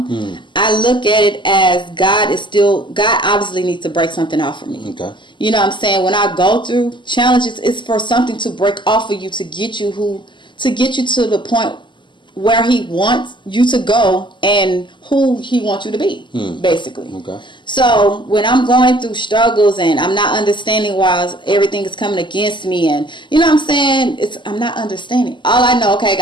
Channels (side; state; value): right; late; 0.23 ms